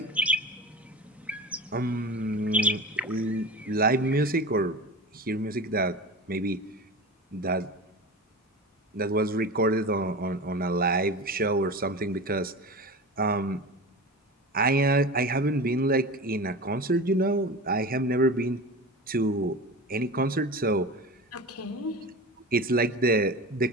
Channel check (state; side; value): normal; both; correlation 0.30